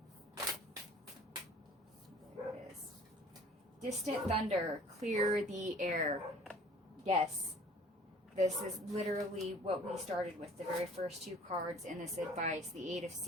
There it is. Distant thunder, clear the air. Yes. This is literally what we started with, the very first two cards in this advice, the 8 of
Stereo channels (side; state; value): both; normal; correlation 0.51